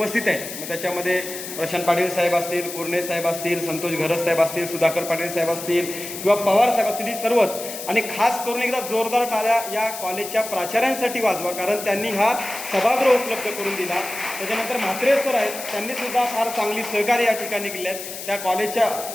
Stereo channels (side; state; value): left; noise; hiss, 9 dB below the sound